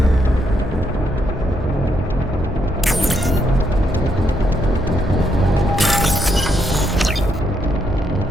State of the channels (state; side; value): normal; both; correlation 0.77